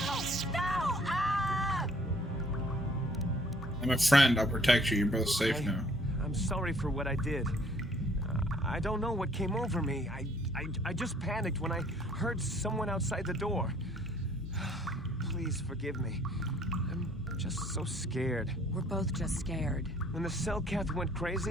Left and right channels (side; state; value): both; normal; correlation 0.59